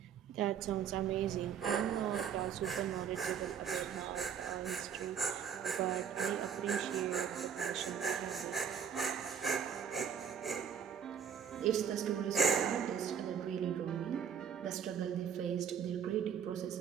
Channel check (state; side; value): quieter; left; 7.8 dB